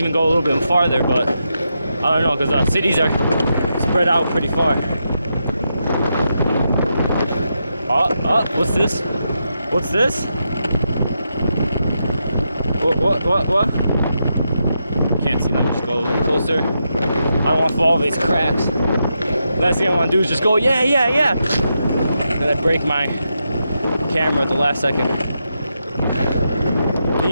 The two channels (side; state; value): both; inverted; correlation -0.84